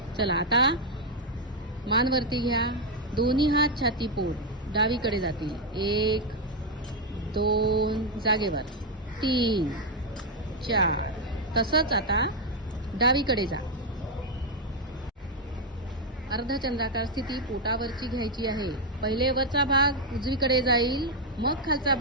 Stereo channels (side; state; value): both; normal; correlation 0.02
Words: चला आता मान वरती घ्या. दोन्ही हात छातीपोट डावीकडे जातील. 1, 2, जागेवर 3, 4. तसंच आता डावीकडे जा. अर्धचंद्राकार स्थिती पोटावरची घ्यायची आहे. पहिले वरचा भाग उजवीकडे जाईल, मग खालचा